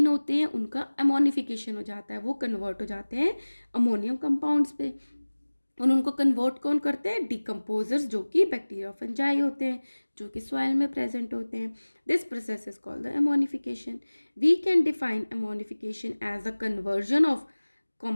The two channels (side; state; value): both; inverted; correlation -1.00